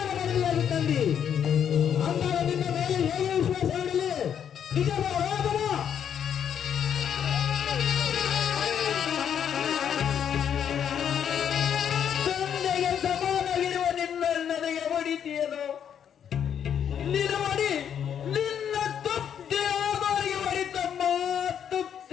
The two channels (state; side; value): quieter; right; 8.7 dB